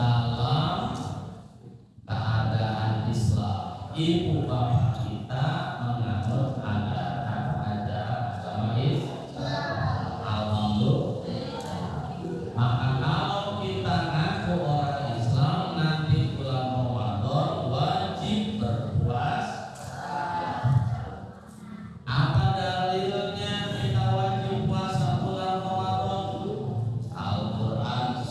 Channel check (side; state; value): both; identical; correlation 1.00